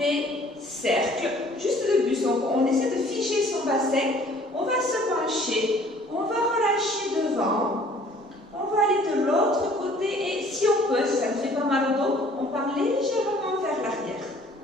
cercles, juste de buste. Donc on essaie de figer son bassin. On va se pencher. On va relâcher devant. On va aller de l'autre côté. Et si on peut, si ça ne fait pas mal au dos, on part légèrement vers l'arrière.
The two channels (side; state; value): both; normal; correlation 0.55